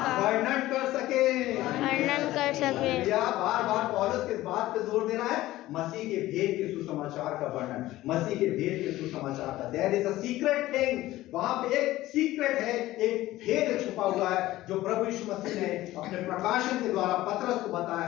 वर्णन कर सके। वर्णन कर सके। या बार बार पौलुस किस बात पे जोर दे रहा है? मसीह के भेद के सुसमाचार का वर्णन, मसीह के भेद के सुसमाचार का। There is a secret thing, वहां पे एक सीक्रेट है, एक भेद छुपा हुआ है जो प्रभु यीशु मसीह ने अपने प्रकाशन के द्वारा पतरस को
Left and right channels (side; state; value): right; quieter; 16.2 dB